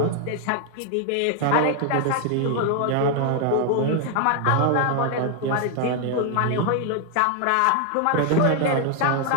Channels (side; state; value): both; different; correlation 0.00